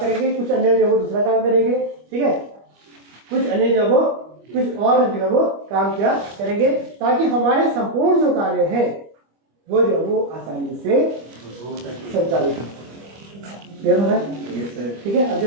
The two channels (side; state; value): left; late; 25 ms